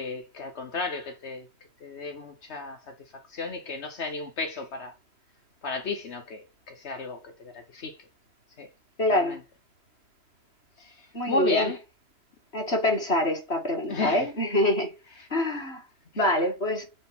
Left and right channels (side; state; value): right; late; 3.2 ms